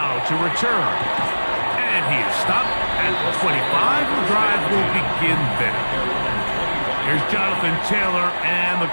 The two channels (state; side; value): inverted; both; correlation -1.00